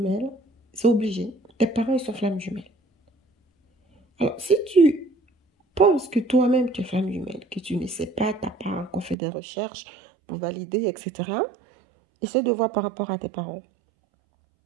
c'est obligé. Tes parents, ils sont flammes jumelles. Alors, si tu penses que toi-même, tu es flamme jumelle, que tu ne sais pas, tu n'as pas encore fait des recherches pour valider, etc., essaie de voir par rapport à tes parents.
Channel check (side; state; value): left; drops out; at 9.2 s